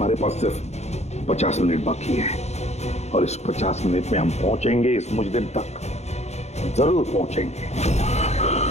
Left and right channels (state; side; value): late; right; 0.32 ms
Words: पास सिर्फ 50 मिनट बाकी है, और इस 50 मिनट में हम पहुंचेंगे इस मुजरिम तक, जरूर पहुंचेंगे।